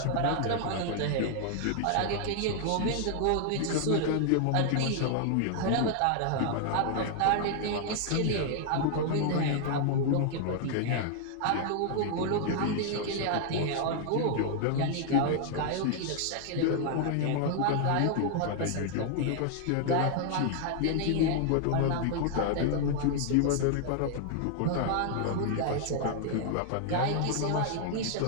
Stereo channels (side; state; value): both; different; correlation 0.00